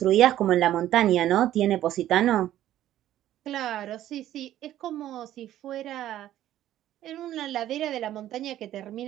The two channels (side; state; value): left; quieter; 12.8 dB